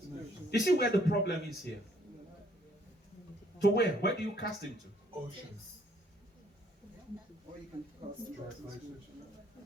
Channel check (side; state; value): both; normal; correlation 0.65